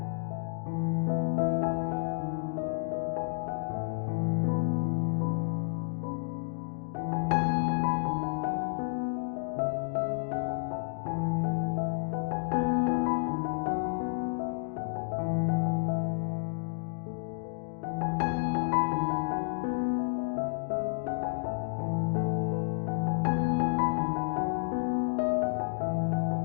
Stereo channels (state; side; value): silent; right; digital silence